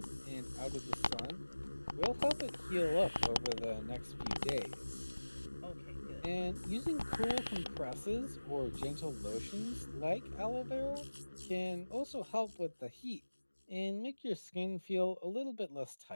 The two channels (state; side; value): inverted; both; correlation -1.00